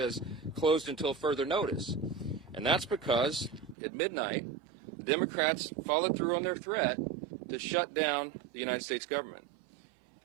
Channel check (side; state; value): left; drops out; at 3.8 s